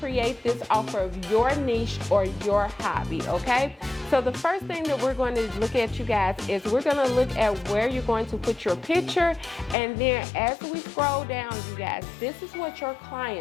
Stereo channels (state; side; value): drops out; right; at 9.8 s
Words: this off of your niche or your hobby, okay? So the first thing that we're going to look at, you guys, is we're going to look at where you're going to put your picture. And then as we scroll down, you guys, this is what your